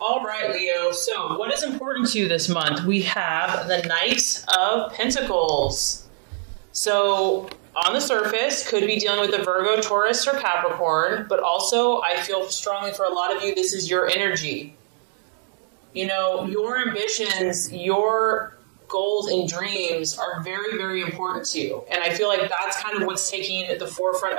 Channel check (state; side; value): silent; left; digital silence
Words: All right, Leo. So what is important to you this month? We have the Knight of Pentacles. So on the surface, could be dealing with a Virgo, Taurus, or Capricorn, but also I feel strongly for a lot of you, this is your energy. You know, your ambitions, your goals and dreams are very, very important to you. And I feel like that's kind of what's taking the forefront